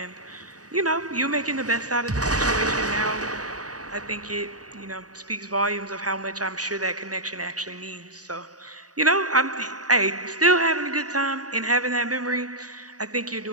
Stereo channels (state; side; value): late; left; 0.67 ms